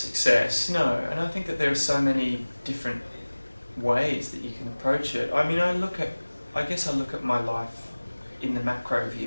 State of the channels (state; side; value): inverted; both; correlation -1.00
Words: no, and I think that there are so many different ways that you can approach it. I mean, I guess I look at my life in the macro